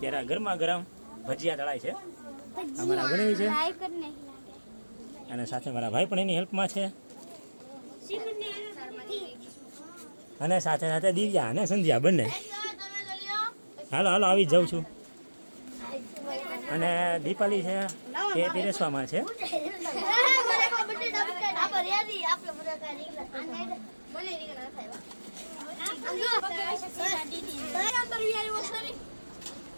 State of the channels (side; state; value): both; inverted; correlation -1.00